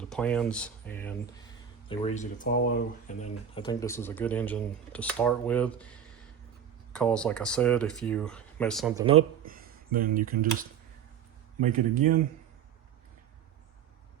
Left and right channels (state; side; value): quieter; left; 8.4 dB